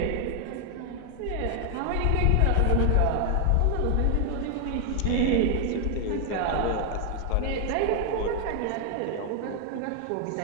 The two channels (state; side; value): different; both; correlation 0.00